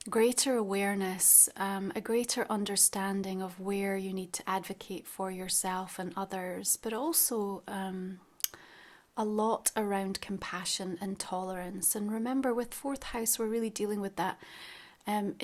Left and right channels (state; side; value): identical; both; correlation 1.00